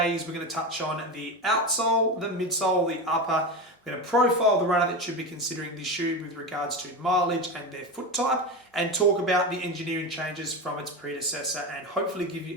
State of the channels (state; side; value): normal; both; correlation 0.21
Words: is we're going to touch on the outsole, the midsole, the upper. We're going to profile the runner that should be considering this shoe with regards to mileage and their foot type, and talk about the engineering changes from its predecessor, and hopefully give